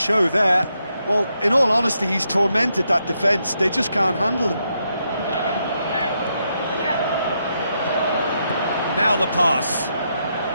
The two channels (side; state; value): both; inverted; correlation -0.81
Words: there. Well, in all honesty, he's tormented that defence. They just can't handle him. Now the pass.